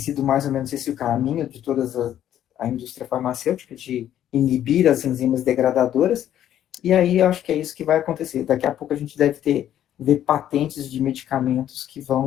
mais ou menos esse o caminho de toda a indústria farmacêutica, de inibir as enzimas degradadoras, e aí eu acho que é isso que vai acontecer. Daqui a pouco a gente deve ver patentes de medicamentos que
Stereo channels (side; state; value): right; quieter; 11.2 dB